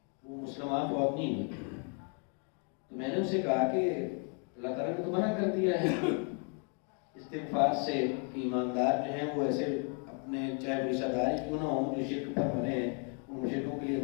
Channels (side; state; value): right; quieter; 39.6 dB